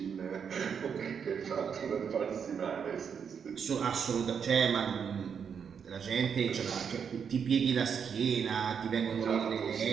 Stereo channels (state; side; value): quieter; left; 7.0 dB